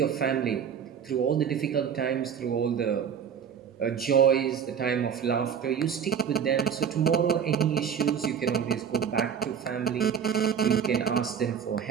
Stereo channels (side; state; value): left; quieter; 7.8 dB